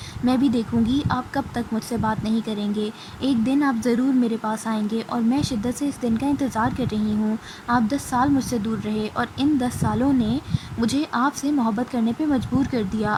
میں بھی دیکھوں گی آپ کب تک مجھ سے بات نہیں کریں گے۔ ایک دن آپ ضرور میرے پاس آئیں گے اور میں شدت سے اس دن کا انتظار کر رہی ہوں۔ آپ 10 سال مجھ سے دور رہے اور ان 10 سالوں نے مجھے آپ سے محبت کرنے پہ مجبور کر دیا۔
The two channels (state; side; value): identical; both; correlation 1.00